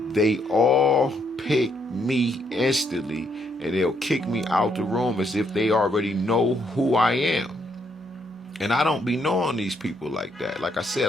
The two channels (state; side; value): normal; both; correlation 0.73